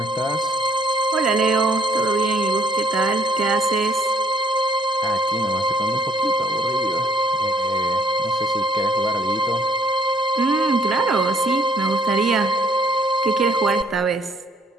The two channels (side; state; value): both; normal; correlation 0.64